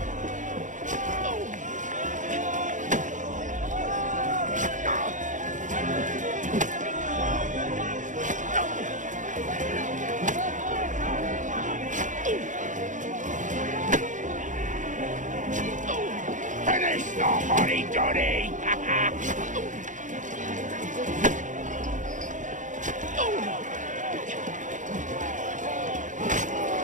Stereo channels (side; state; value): left; late; 0.37 ms